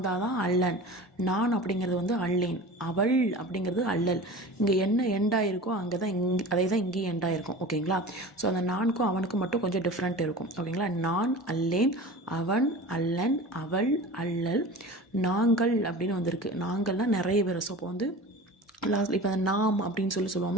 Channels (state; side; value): normal; both; correlation 0.35